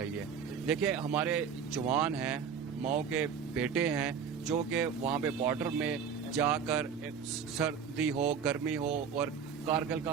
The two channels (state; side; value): quieter; left; 6.9 dB